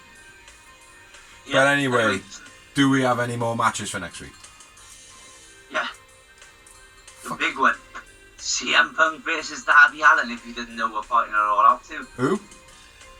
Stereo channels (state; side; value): identical; both; correlation 1.00